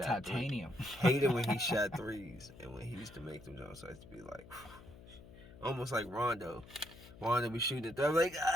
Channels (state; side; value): noise; left; hum, 19 dB below the sound